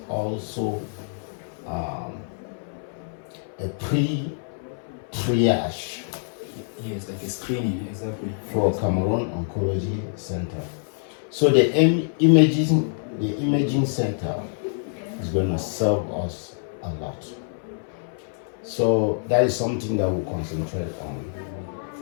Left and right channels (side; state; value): right; silent; 59 dB below the other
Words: also a pre-triage. Yes, like a screening, exactly. For Cameroon Oncology Center. So the imaging center is going to serve us a lot. So that is something that we'll concentrate